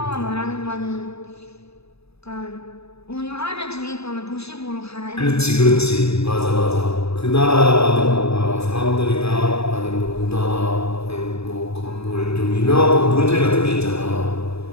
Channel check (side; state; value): right; late; 0.79 ms